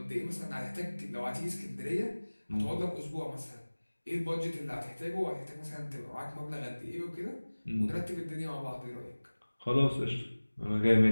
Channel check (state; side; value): inverted; both; correlation -1.00